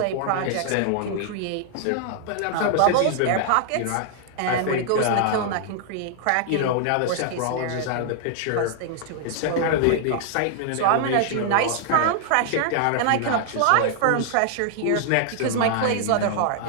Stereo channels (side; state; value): both; different; correlation -0.01